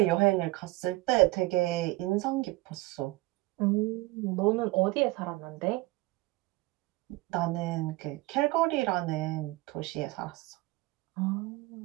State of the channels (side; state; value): left; quieter; 20.5 dB